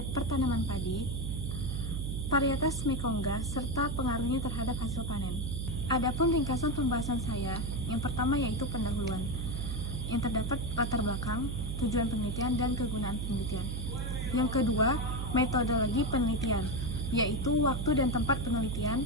Pertanaman Padi, Varietas Mekongga, serta pengaruhnya terhadap hasil panen. Adapun ringkasan pembahasan saya, yang pertama yaitu pendahuluan, yang terdapat latar belakang, tujuan penelitian, dan kegunaan penelitian. Yang kedua, metodologi penelitian, yaitu waktu dan tempat penelitian,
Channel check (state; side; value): noise; right; hum, 3 dB below the sound